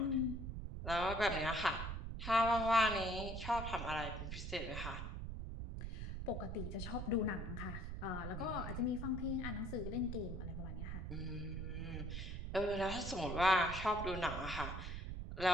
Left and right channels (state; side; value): noise; right; rumble, 5 dB below the sound